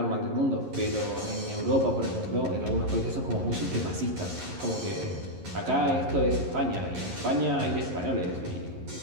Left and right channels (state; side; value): late; left; 11 ms